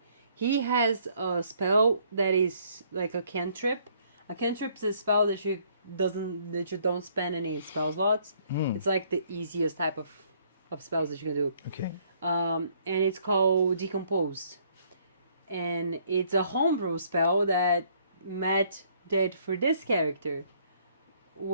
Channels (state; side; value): inverted; both; correlation -0.64